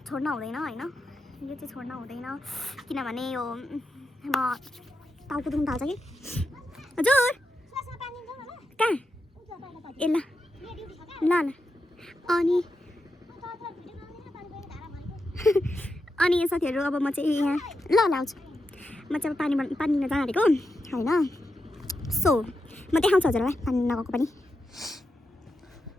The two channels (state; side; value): normal; both; correlation 0.87